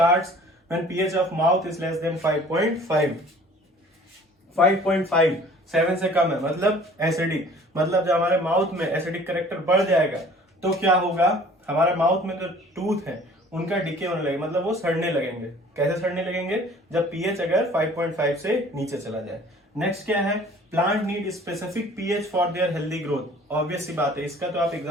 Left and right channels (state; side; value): normal; both; correlation 0.50